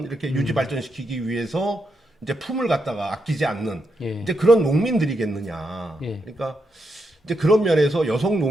이렇게 유지 발전시키기 위해서 이제 품을 갖다가 아끼지 않는 이제 그런 농민들이겠느냐? 그러니까 이제 그런 면에서 여성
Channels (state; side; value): normal; both; correlation 0.83